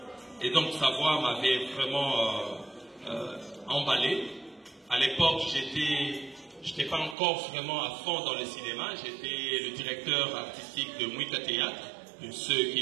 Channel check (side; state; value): left; drops out; at 7.2 s